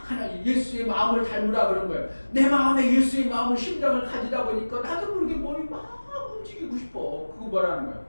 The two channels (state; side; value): inverted; both; correlation -1.00